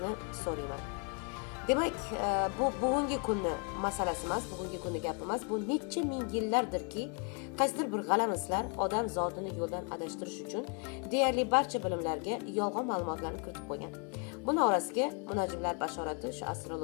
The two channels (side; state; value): right; quieter; 37.7 dB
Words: so'rayman. Demak, bu bugungi kunni masalasi emas, bugungi kunni gapi emas. Bu necha ming yillardirki, qaysidir bir g'alamislar odam zotini yo'ldan adashtirish uchun deyarli barcha bilimlarga yolg'on ma'lumotlarni kiritib qo'ygan. Buning orasiga munajjimlar bashorati, shu